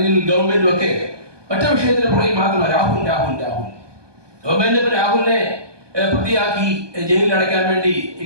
ഗവൺമെന്റും ഒക്കെ ഒറ്റ വിഷയത്തിന് പുറകിൽ മാത്രമല്ല രാഹുൽ രാഹുൽ രാഹുൽ ഗവൺമെന്റ് ഇപ്പൊ രാഹുലിനെ പ്രതിയാക്കി ജയിലിൽ അടയ്ക്കാൻ വേണ്ടി ഈ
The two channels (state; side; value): late; left; 1.2 ms